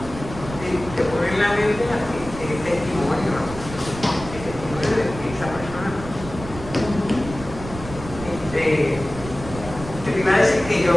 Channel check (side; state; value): right; noise; rumble, 12 dB below the sound